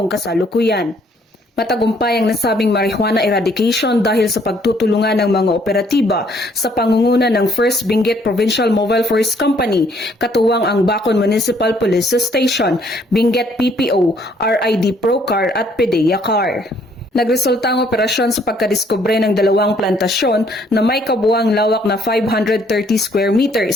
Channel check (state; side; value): normal; both; correlation 0.65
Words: kasalukuyan. Matagumpay ang nasabing marijuana eradication dahil sa pagtutulungan ng mga operatiba sa pangunguna ng First Benguet Provincial Mobile Forest Company, katuwang ang Bacon Municipal Police Station, Benguet PPO, RID Procar at PDEA Car. Nagresulta ang operasyon sa pagkadiskubre ng dalawang plantasyon na may kabuuang lawak na 530 square